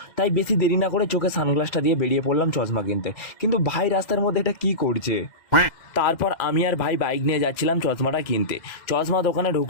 তাই বেশি দেরি না করে চোখে সানগ্লাসটা দিয়ে বেরিয়ে পড়লাম চশমা কিনতে। কিন্তু ভাই রাস্তার মধ্যে এটা কি করছে। তারপর আমি আর ভাই বাইক নিয়ে যাচ্ছিলাম চশমাটা কিনতে। চশমা দোকানে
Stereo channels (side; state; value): right; late; 2.1 ms